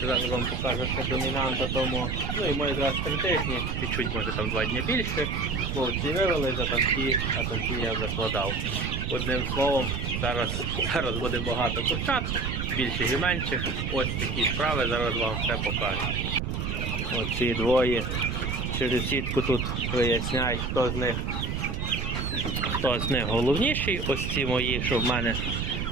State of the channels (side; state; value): right; noise; rumble, 2 dB below the sound